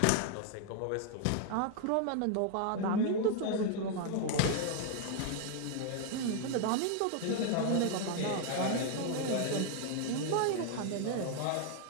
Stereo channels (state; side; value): different; both; correlation 0.00